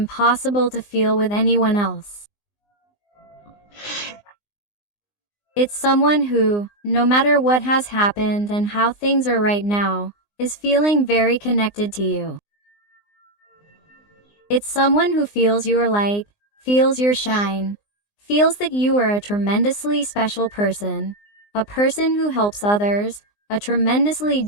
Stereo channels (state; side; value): late; right; 19 ms